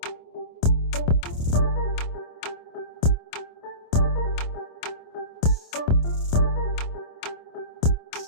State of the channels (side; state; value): right; late; 27 ms